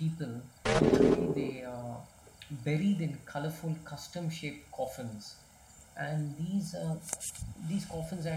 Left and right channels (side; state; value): both; identical; correlation 1.00